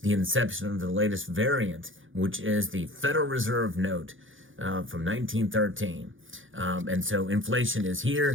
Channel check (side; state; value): left; late; 0.57 ms